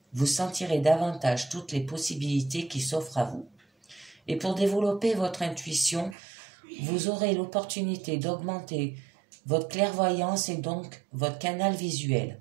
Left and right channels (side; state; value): left; drops out; at 6.2 s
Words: Vous sentirez davantage toutes les possibilités qui s'offrent à vous. Et pour développer votre intuition, vous aurez l'opportunité d'augmenter votre clairvoyance et donc votre canal visuel.